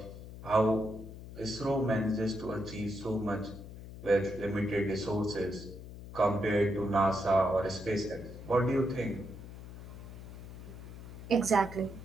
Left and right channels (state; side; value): noise; left; hum, 13 dB below the sound